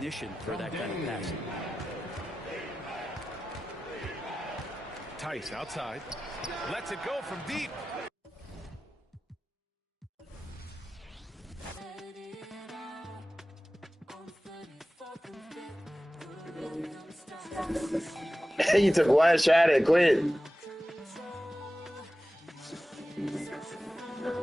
for that kind of passing. Tice outside. Lets it go from deep. You took one shot and quit.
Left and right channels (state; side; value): normal; both; correlation 0.95